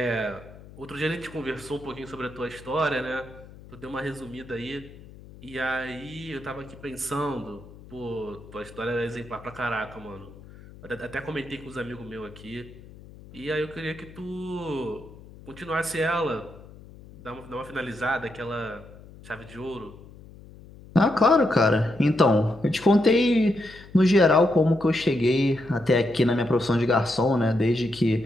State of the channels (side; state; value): left; noise; hum, 19 dB below the sound